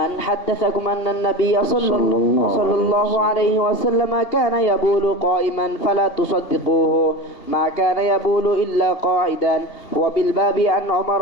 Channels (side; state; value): right; late; 2.8 ms